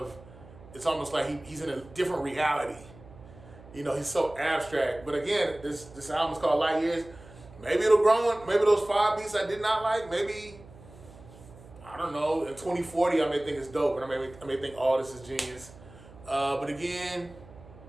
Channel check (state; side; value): noise; right; hum, 20 dB below the sound